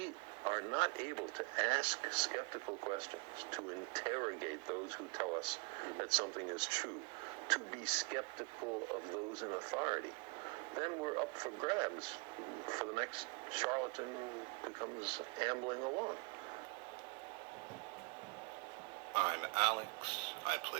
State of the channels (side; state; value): left; quieter; 30.3 dB